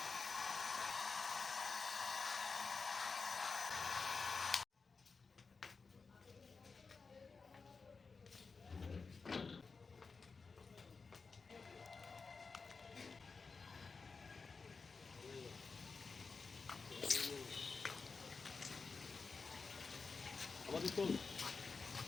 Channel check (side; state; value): right; quieter; 4.6 dB